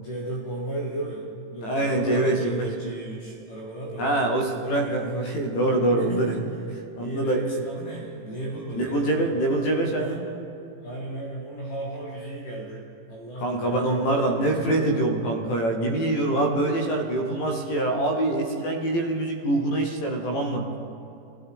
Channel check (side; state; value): right; late; 18 ms